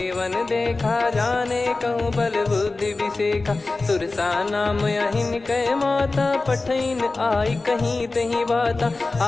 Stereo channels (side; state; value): right; quieter; 3.5 dB